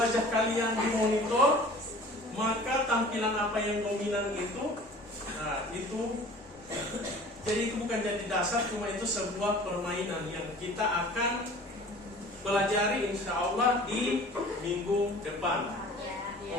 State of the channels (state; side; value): normal; both; correlation 0.45